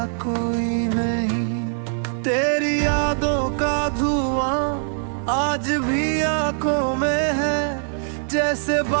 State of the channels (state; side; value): silent; left; 63 dB below the other